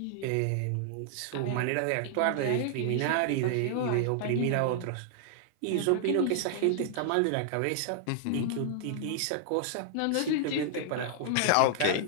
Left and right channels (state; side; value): different; both; correlation -0.01